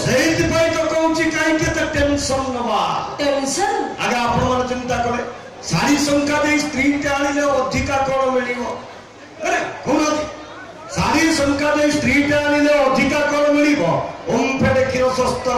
सेहित पई तो कहूची काई के त टेंशन नबा। टेंशन आगे आपण मन चिंता करे सारी संख्या दे स्त्री के आनिले अधिका कोन मिलिबो। अरे कोन सारी संख्या दे स्त्री के आनिले अधिका कोन मिलिबो। ओम फेडे किरो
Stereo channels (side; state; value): both; identical; correlation 1.00